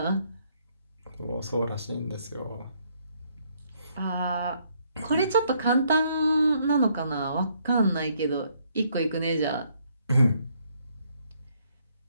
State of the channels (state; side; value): inverted; both; correlation -0.69